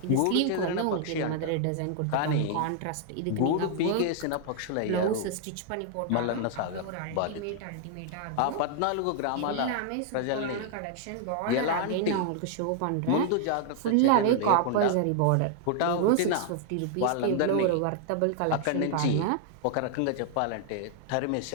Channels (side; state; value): both; different; correlation 0.00